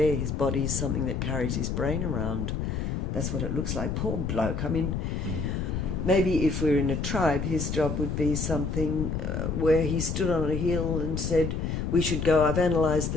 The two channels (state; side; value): noise; left; rumble, 2 dB below the sound